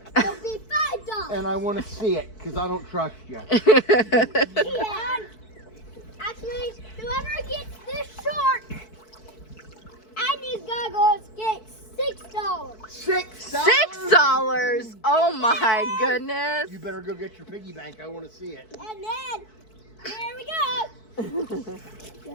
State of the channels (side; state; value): right; late; 4.6 ms